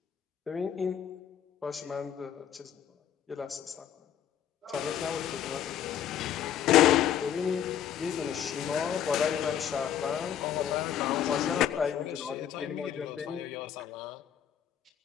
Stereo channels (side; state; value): right; quieter; 9.6 dB